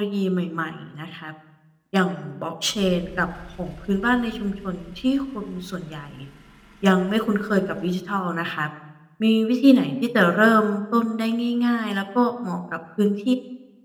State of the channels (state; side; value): identical; both; correlation 1.00